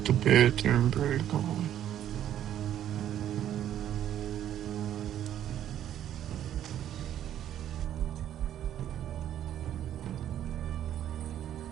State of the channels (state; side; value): quieter; left; 11.0 dB